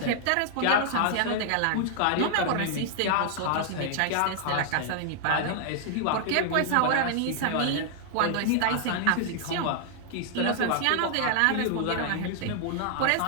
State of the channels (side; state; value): both; different; correlation 0.00